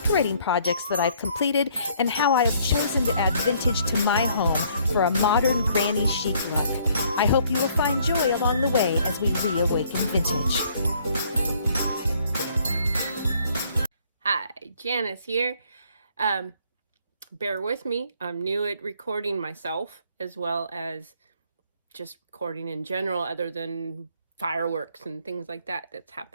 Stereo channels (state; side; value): inverted; both; correlation -0.63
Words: projects that I've completed and how I have chosen to add vintage to my home for a modern granny chic look. I hope you will find joy along the way as we reawaken vintage. Hi, Janice here. Bear with me. I'm new at recording myself as well as just recording in general, other than fireworks and things like that that's